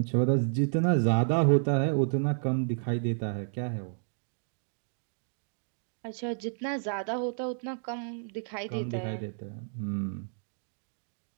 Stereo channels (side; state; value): left; silent; digital silence